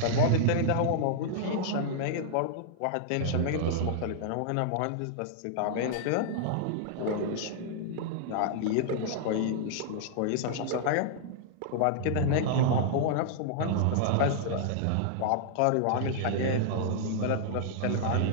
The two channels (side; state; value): both; different; correlation -0.01